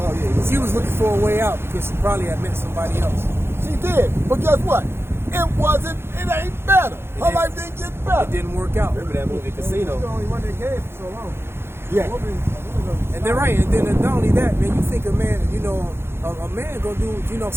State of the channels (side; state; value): left; late; 0.12 ms